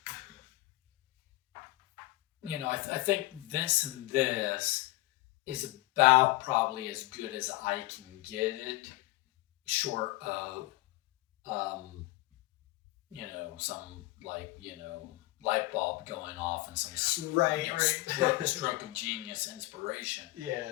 think this and this is about probably as good as I can get it, short of some light bulb going off and some stroke of genius inspiration.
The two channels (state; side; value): quieter; right; 19.8 dB